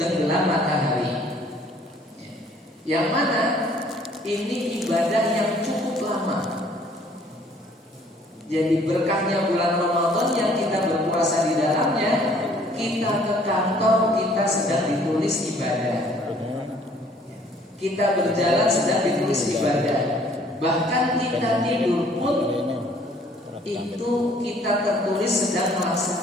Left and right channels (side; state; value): both; normal; correlation 0.59